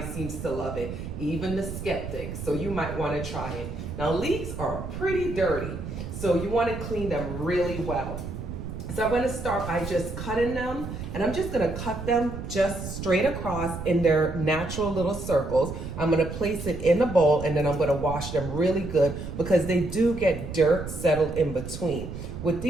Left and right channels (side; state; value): right; noise; rumble, 8 dB below the sound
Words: seems to love it, even the skeptics, so you might wanna try it. Now leeks are pretty dirty, so you wanna clean them really well. So I'm gonna start by just cutting them, and I'm just gonna cut them just straight across in their natural little circles. I'm gonna place it in a bowl, and then I'm gonna wash them really good because they do get dirt settled in between. With